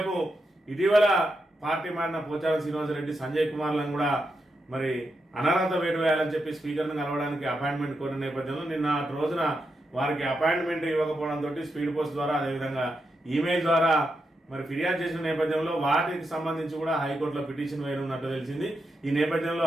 ఇటీవల పార్టీ మారిన పోచారం శ్రీనివాసరెడ్డి, సంజయ్ కుమార్లను కూడా మరి అనర్హత వేటు వేయాలని చెప్పి స్పీకర్ను కలవడానికి అపాయింట్మెంట్ కోరిన నేపథ్యంలో నిన్న రోజున వారికి అపాయింట్మెంట్ ఇవ్వకపోవడంతో స్పీడ్ పోస్ట్ ద్వారా అదేవిధంగా ఈమెయిల్ ద్వారా మరి ఫిర్యాదు చేసిన నేపథ్యంలో వాటికి సంబంధించి కూడా హైకోర్టులో పిటిషన్ వేయనున్నట్టు తెలిసింది. ఈ నేపథ్యంలో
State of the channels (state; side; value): normal; both; correlation 0.85